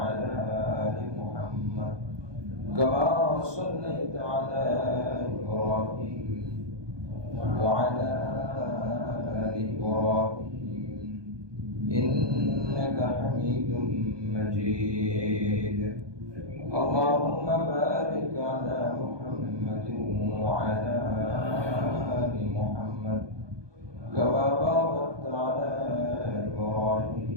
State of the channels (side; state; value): left; late; 1.2 ms